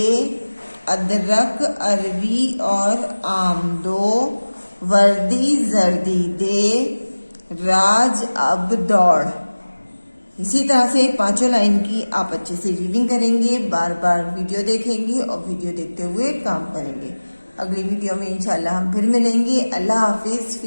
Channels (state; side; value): inverted; both; correlation -1.00